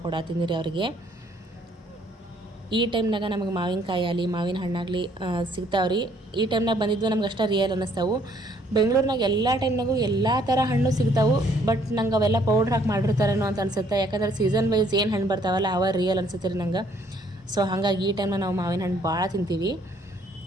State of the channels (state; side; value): normal; both; correlation 0.64